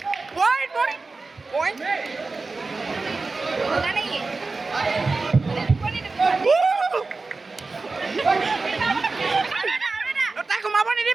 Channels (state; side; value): quieter; left; 3.8 dB